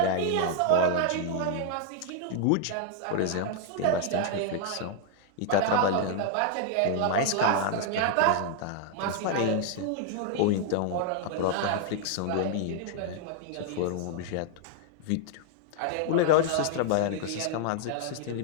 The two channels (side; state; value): both; different; correlation 0.00